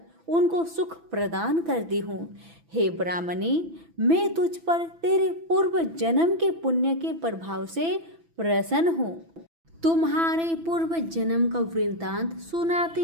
उनको सुख प्रदान करती हूँ। हे ब्राह्मणी, मैं तुझ पर तेरे पूर्व जन्म के पुण्य के प्रभाव से प्रसन्न हूँ। तुम्हारे पूर्व जन्म का वृत्तांत सुनाती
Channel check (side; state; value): left; late; 6.0 ms